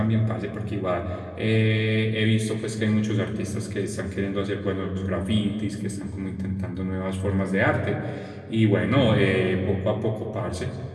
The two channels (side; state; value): both; identical; correlation 1.00